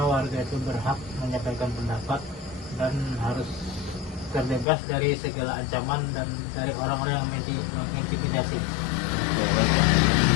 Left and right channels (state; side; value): drops out; right; at 4.7 s